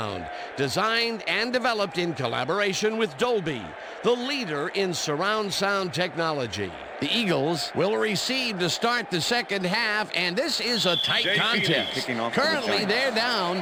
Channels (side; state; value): both; identical; correlation 1.00